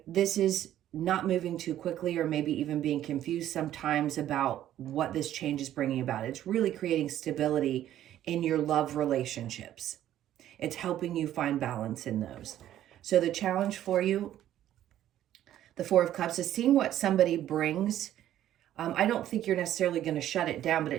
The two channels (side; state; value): left; quieter; 12.2 dB